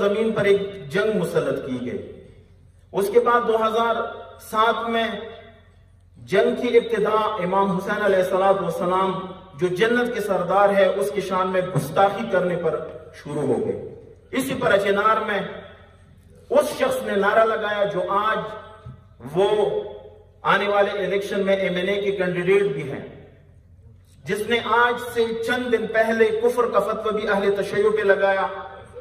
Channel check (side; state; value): both; identical; correlation 1.00